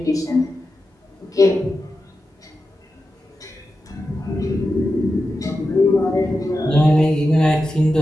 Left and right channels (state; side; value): normal; both; correlation 0.91